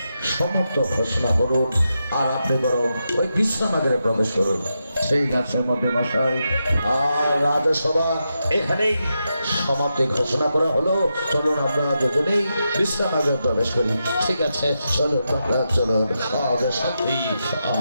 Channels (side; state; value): both; inverted; correlation -0.86